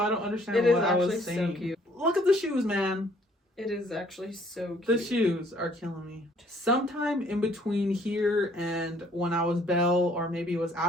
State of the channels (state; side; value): normal; both; correlation 0.61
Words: don't understand what I was saying. So cute. Look at the shoes, man. It is actually so cute. The shoes are killing me. Sometime in between here and when I was Belle, or maybe it was